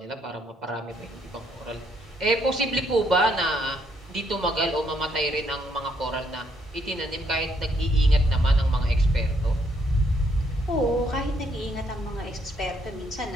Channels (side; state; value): both; normal; correlation 0.72